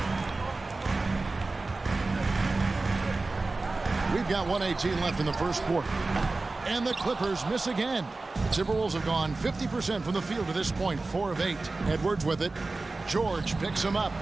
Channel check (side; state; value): left; quieter; 3.4 dB